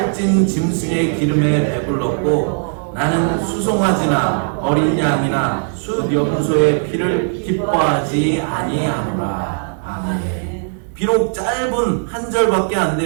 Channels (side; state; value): left; silent; digital silence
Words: 짐승의 기름에 배불렀고 나는 수송아지나 어린 양이나 숫염소의 피를 기뻐하지 아니하노라. 아멘. 비록 짧은 한 절밖에 안